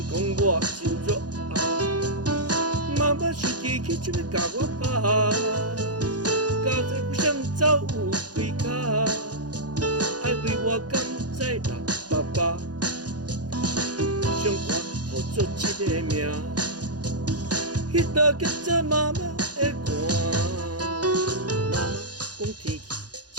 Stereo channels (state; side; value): late; left; 0.69 ms